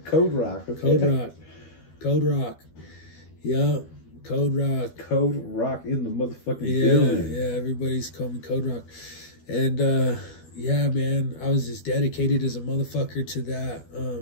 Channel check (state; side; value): late; right; 12 ms